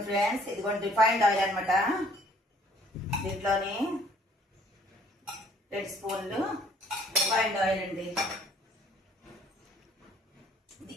ఫ్రెండ్స్, ఇదిగోండి రిఫైన్డ్ ఆయిల్ అనమాట. దీంట్లోని 2 స్పూన్లు రిఫైన్డ్ ఆయిల్ అండి.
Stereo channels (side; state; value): both; normal; correlation 0.59